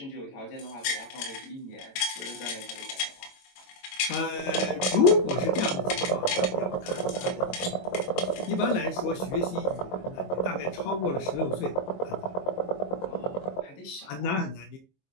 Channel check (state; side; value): late; right; 22 ms